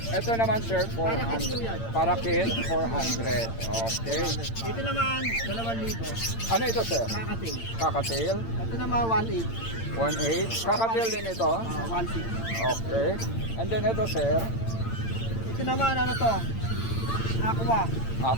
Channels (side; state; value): right; late; 8.8 ms